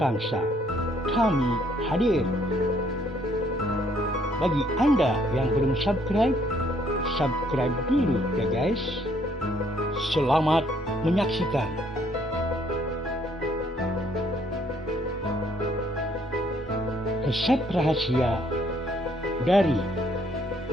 Kami hadir. Bagi Anda yang belum subscribe dulu ya guys. Selamat menyaksikan. Resep rahasia dari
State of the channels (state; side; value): normal; both; correlation 0.66